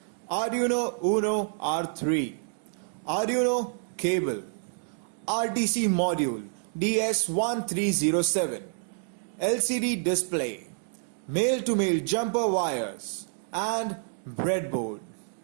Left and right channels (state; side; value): silent; left; digital silence